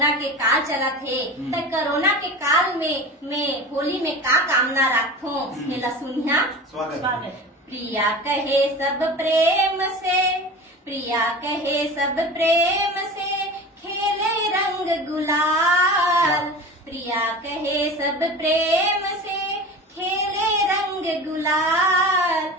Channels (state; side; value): normal; both; correlation 0.33